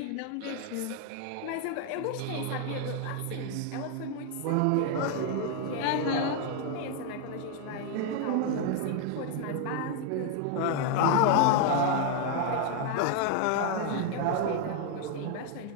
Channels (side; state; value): both; different; correlation 0.00